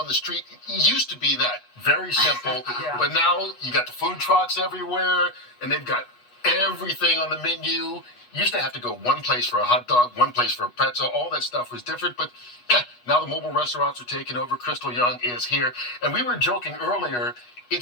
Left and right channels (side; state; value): right; late; 8.2 ms